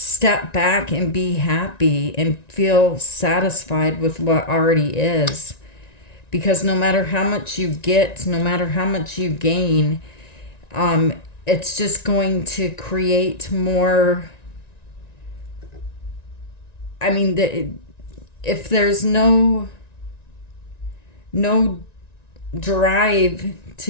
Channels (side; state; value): right; late; 1.9 ms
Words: back and be happy and feel satisfied with what already is. Because no matter how much you get, no matter how much you gain, it's just going to create more. I mean, if there's no drive